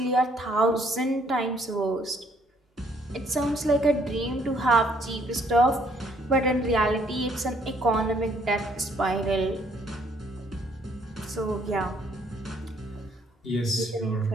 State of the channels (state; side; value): normal; both; correlation 0.66